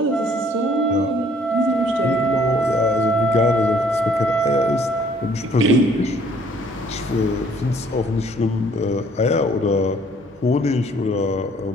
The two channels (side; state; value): both; normal; correlation 0.60